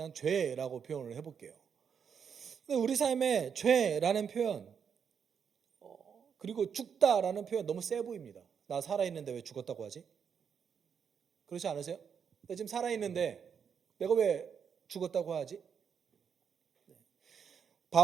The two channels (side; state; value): left; quieter; 7.1 dB